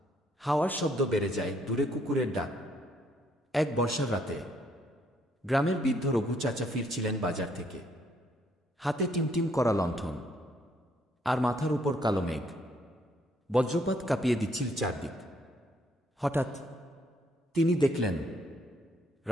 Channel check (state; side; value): normal; both; correlation 0.69